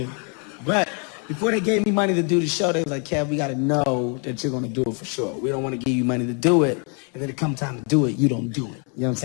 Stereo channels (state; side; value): quieter; right; 37.8 dB